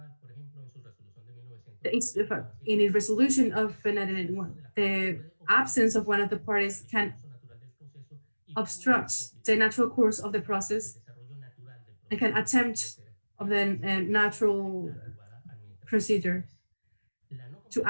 In a resolution of 1991, the absence of one of the parties can obstruct the natural course of the process and can attempt of the natural procedure to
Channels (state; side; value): inverted; both; correlation -1.00